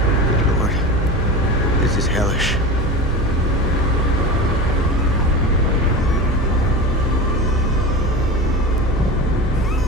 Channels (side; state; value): both; normal; correlation 0.28